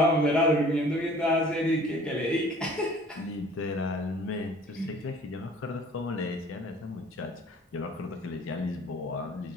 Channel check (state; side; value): normal; both; correlation 0.51